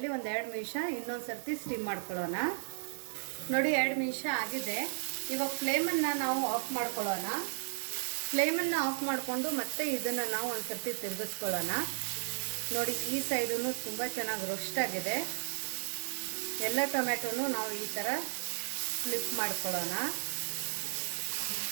ಒಂದು 2 ನಿಮಿಷ ಇನ್ನೊಂದು ಸರ್ತಿ ಸ್ಟೀಮ್ ಮಾಡ್ಕೊಳ್ಳೋಣ. ನೋಡಿ 2 ನಿಮಿಷ ಆಗಿದೆ. ಇವಾಗ ಫ್ಲೇಮನ್ನು ನಾವು ಆಫ್ ಮಾಡ್ಕೊಳ್ಳೋಣ. ಫ್ಲೇಮನ್ನು ಆಫ್ ಮಾಡಿಕೊಂಡು ಮತ್ತೆ ಇದನ್ನು ನಾವು ಒಂದು ಸರ್ತಿ ತಿರುಗಿಸ್ಕೊಳ್ಳೋಣ. ನೋಡಿ ಈ ಸೈಡೂ ತುಂಬ ಚೆನ್ನಾಗಿ ರೋಸ್ಟ್ ಆಗಿದೆ. ಎಲ್ಲ ಟೊಮೆಟೊನು ನಾವು ಈ ಥರ ಫ್ಲಿಪ್ ಮಾಡ್ಕೊಳ್ಳೋಣ.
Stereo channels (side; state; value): left; silent; digital silence